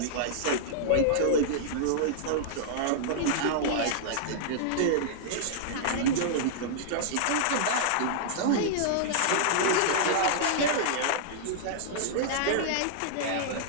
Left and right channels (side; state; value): both; different; correlation -0.01